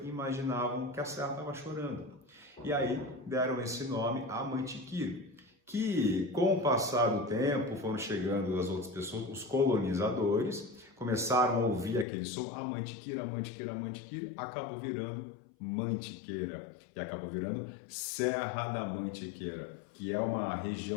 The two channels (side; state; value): right; drops out; at 12.1 s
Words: e imaginavam que a serra estava chorando. E aí deram esse nome a Amantiquir, que com o passar do tempo foram chegando as outras pessoas, os colonizadores, começaram a ouvir aquele som, Amantiquir, Amantiquir, Amantiquir, acabou virando Mantiqueira e acabou virando Serra da Mantiqueira, que é uma